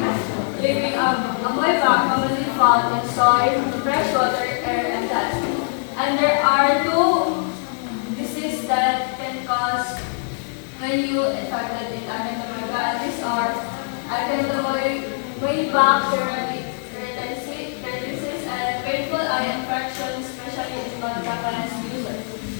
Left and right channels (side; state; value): right; silent; digital silence